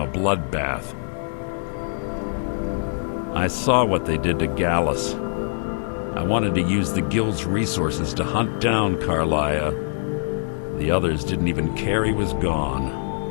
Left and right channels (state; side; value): silent; right; digital silence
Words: a bloodbath. I saw what they did to Gallus. I wanted to use the guild's resources to hunt down Carlia. The others didn't even care he was gone.